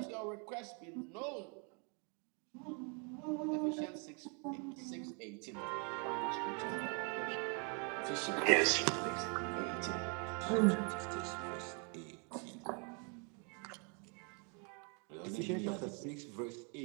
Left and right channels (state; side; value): quieter; left; 36.5 dB